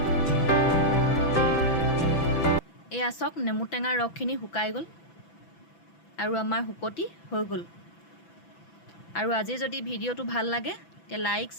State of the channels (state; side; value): late; right; 6.0 ms